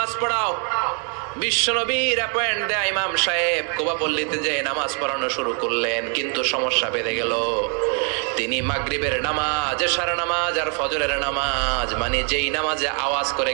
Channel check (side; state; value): left; quieter; 39.6 dB